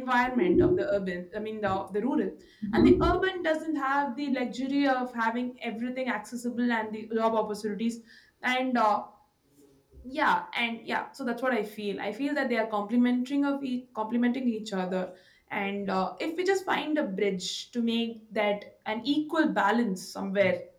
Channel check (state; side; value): identical; both; correlation 1.00